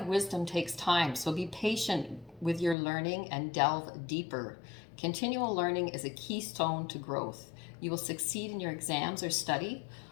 wisdom takes time, so be patient with your learning and delve deeper. Continual learning is a keystone to growth. You will succeed in your exams or study.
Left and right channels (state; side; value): drops out; right; at 2.8 s